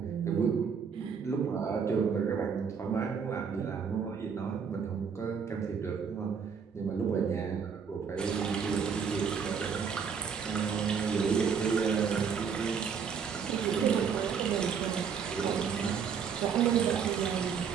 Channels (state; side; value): quieter; left; 6.6 dB